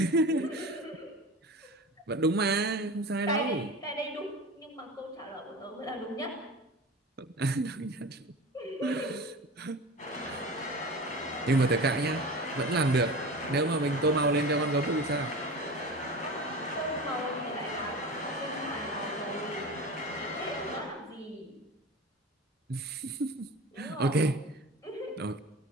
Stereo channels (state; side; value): normal; both; correlation 0.32